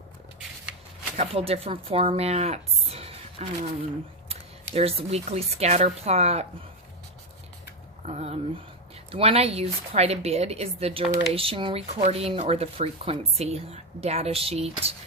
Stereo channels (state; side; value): normal; both; correlation 0.08